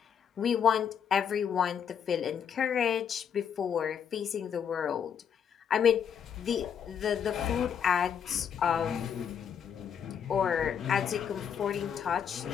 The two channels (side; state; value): right; quieter; 8.0 dB